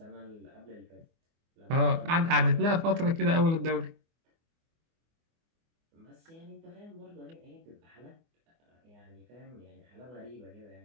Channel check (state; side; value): late; left; 24 ms